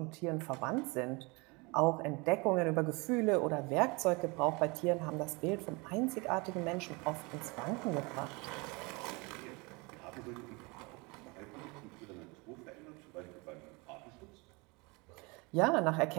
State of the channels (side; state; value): left; quieter; 27.5 dB